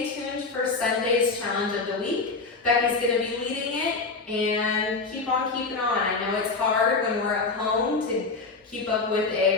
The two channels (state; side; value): quieter; right; 4.0 dB